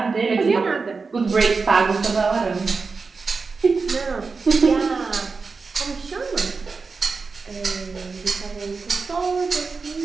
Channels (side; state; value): left; quieter; 4.5 dB